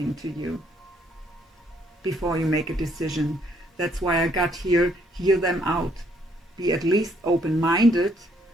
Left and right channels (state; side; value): normal; both; correlation 0.69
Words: to you before you make a decision. That's why I got here, hear them out. Be at least open-minded